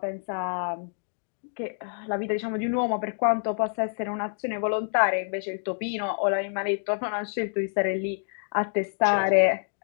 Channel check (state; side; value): silent; right; digital silence